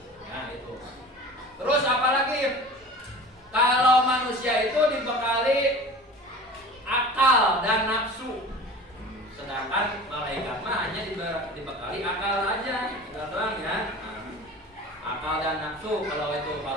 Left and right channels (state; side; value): normal; both; correlation 0.38